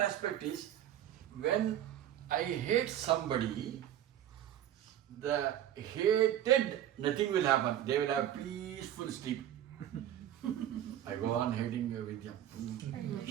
aspect is, when I hate somebody, the hated, nothing will happen. They will have peaceful sleep. I go on hating Vidya.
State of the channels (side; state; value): left; quieter; 11.4 dB